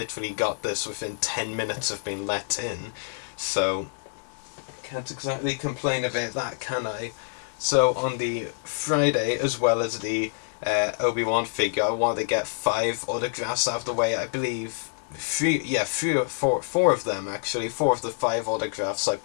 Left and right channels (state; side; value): silent; right; digital silence